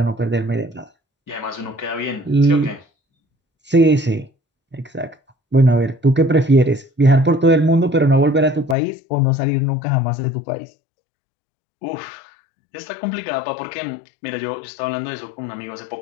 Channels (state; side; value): drops out; right; at 8.8 s